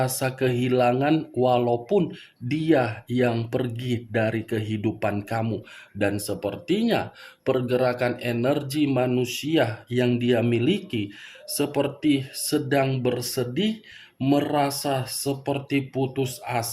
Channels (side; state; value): both; identical; correlation 1.00